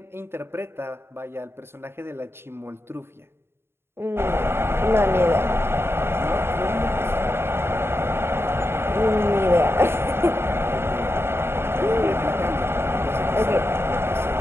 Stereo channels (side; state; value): left; late; 0.12 ms